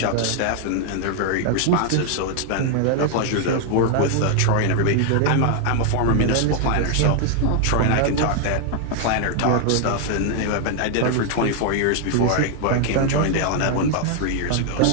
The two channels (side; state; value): both; different; correlation 0.00